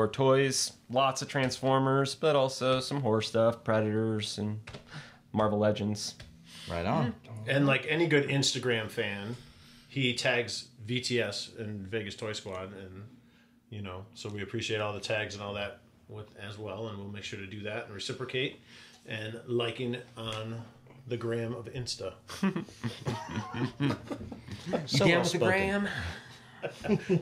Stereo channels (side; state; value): both; identical; correlation 1.00